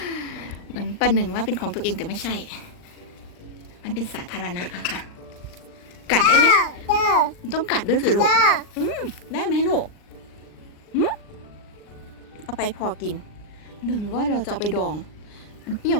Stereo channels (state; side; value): late; right; 39 ms